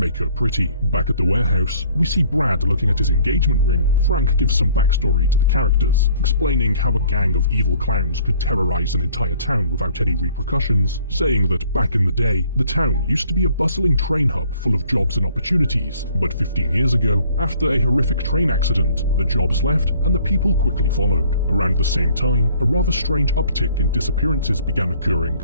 her pretty. Back at the warehouse, we see Brad looking at his engagement ring. Frank gives some backstory to the characters, explaining how a gang of evil clowns could terrorize an entire town without any repercussions, saying that back in the day, the town used to be a bustling train hub full of jobs and opportunities, but 15 years ago, after a horrific train accident, the jobs left and the people quickly followed. Around the same same time, a rather strange uptick in disappearances began occurring,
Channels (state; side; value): inverted; both; correlation -0.58